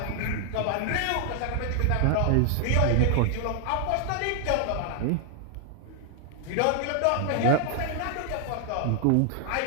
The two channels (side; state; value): both; different; correlation 0.00